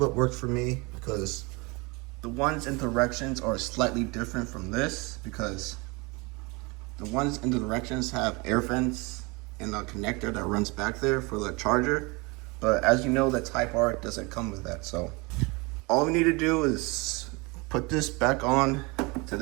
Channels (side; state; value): left; quieter; 27.0 dB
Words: worked for me because the ones in directions are slightly different from this because the ones in the directions have air vents and a connector that runs back there for the charger. But as you know, the Type R doesn't come with that. So all we need to do is put this back on to